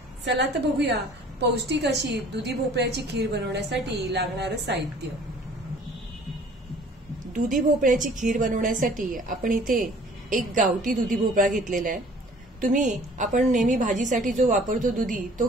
चला तर बघूया पौष्टिक अशी दुधी भोपळ्याची खीर बनवण्यासाठी लागणारं साहित्य। दुधी भोपळ्याची खीर बनवण्यासाठी आपण इथे एक गावठी दुधी भोपळा घेतलेला आहे। तुम्ही आपण नेहमी भाजीसाठी जो वापरतो दुधी तो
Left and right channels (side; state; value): both; normal; correlation 0.52